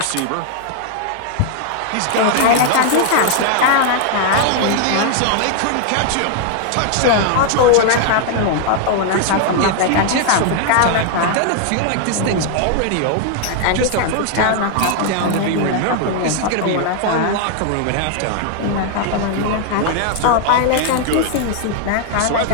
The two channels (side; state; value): both; different; correlation 0.00